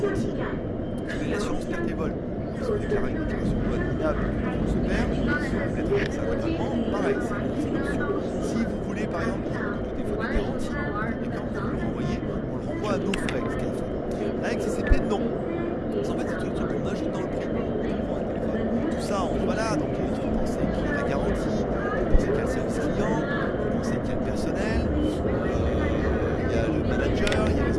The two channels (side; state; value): both; identical; correlation 1.00